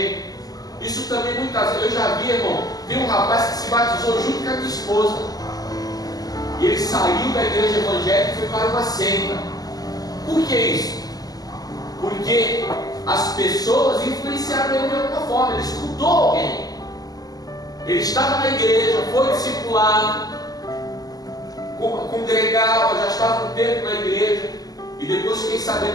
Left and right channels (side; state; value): right; late; 0.18 ms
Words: Isso também muitas vezes, eu já vi, irmão, tem um rapaz que se batizou junto com a minha esposa. E ele saiu da igreja evangélica e foi para uma seita. Por que isso? Porque as pessoas influenciaram ele de alguma forma. Ele escutou alguém. Ele estava na igreja, foi discipulado, congregava, já estava um tempo na igreja. E depois fiquei